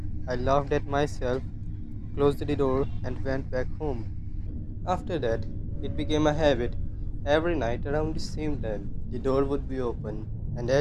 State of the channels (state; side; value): identical; both; correlation 1.00